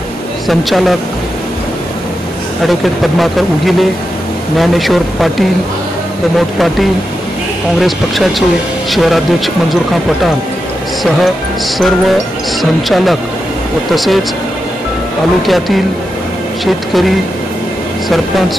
संचालक ॲडव्होकेट पद्माकर उगिले, ज्ञानेश्वर पाटील, प्रमोद पाटील, काँग्रेस पक्षाचे शहराध्यक्ष मंजूरखान पठाण सह सर्व संचालक व तसेच तालुक्यातील शेतकरी, सरपंच,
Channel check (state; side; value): normal; both; correlation 0.88